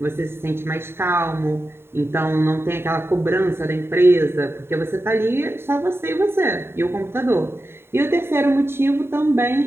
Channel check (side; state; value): left; late; 0.11 ms